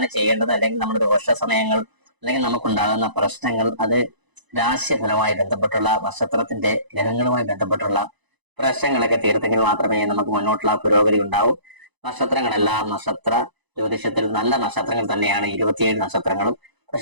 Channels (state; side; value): late; left; 1.0 ms